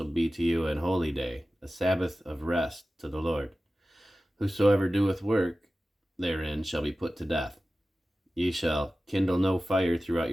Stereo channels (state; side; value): normal; both; correlation 0.95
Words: be to you an holy day, a Sabbath of rest to the Lord. Whosoever doeth work therein shall be put to death. Ye shall kindle no fire throughout